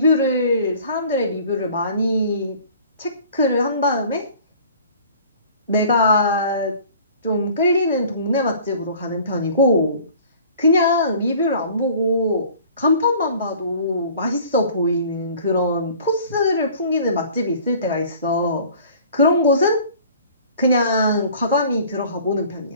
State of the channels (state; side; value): inverted; both; correlation -0.49